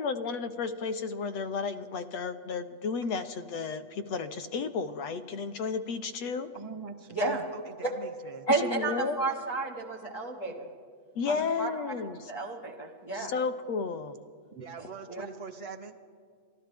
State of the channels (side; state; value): right; late; 8.3 ms